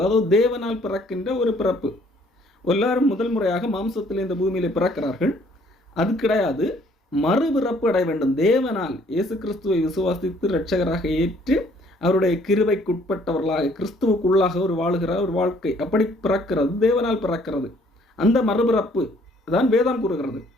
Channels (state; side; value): normal; both; correlation 0.61